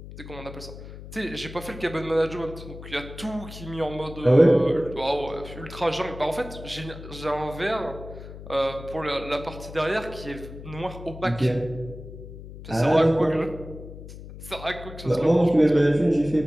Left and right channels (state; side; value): noise; left; hum, 13 dB below the sound